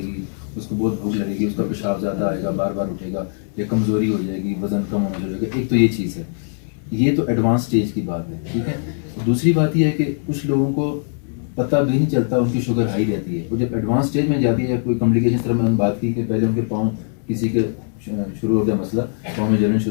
اس کو بہت بھوک لگے گی، اس کا پیشاب زیادہ آئے گا، بار بار اٹھے گا، یا کمزوری ہو جائے گی، وزن کم ہونے لگے گا. ایک تو یہ چیز ہے. یہ تو ایڈوانس اسٹیج کی بات ہے. ٹھیک ہے. دوسری بات یہ ہے کہ کچھ لوگوں کو پتہ بھی نہیں چلتا ان کی شوگر ہائی رہتی ہے. وہ جب ایڈوانس اسٹیج میں جاتی ہے یا کوئی کمپلیکیشن طرح میں ہم بات کی کہ پہلے ان کے پاؤں کسی کے شروع ہو گیا مسئلہ، پاؤں میں جلن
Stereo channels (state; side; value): silent; right; digital silence